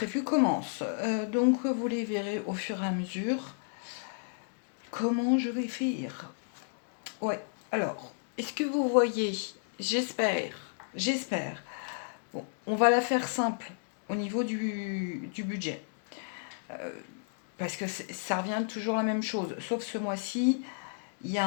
commencent. Donc vous les verrez au fur et à mesure comment je vais faire. Ouais, alors, est-ce que vous voyez? J'espère. Bon, on va la faire simple au niveau du budget. Parce que ça revient toujours la même chose. Sauf ce mois-ci, il y a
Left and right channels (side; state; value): right; silent; digital silence